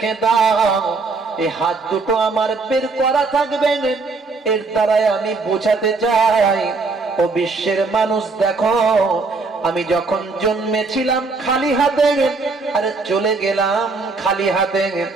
দাও, এই হাত দুটো আমার বের করা থাকবে। এর দ্বারাই আমি বোঝাতে চাই, ও বিশ্বের মানুষ দেখো, আমি যখন জন্মেছিলাম খালি হাতে আর চলে গেলাম খালি হাতে,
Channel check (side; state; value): left; quieter; 4.0 dB